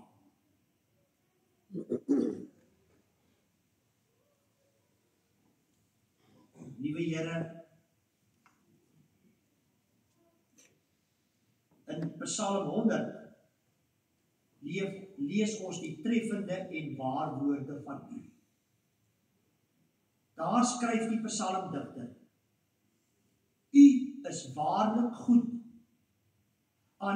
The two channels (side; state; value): both; identical; correlation 1.00